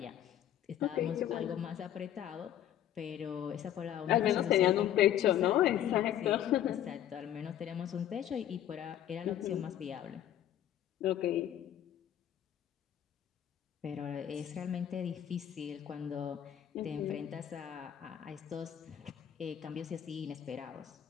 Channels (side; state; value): right; quieter; 11.1 dB